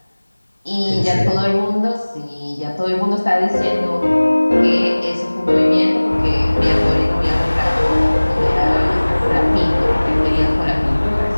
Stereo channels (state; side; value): inverted; both; correlation -1.00